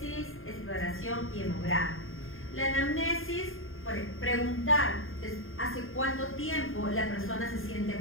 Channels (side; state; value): right; late; 0.60 ms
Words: exploración y hemograma. La anamnesis, preguntar hace cuánto tiempo la persona se siente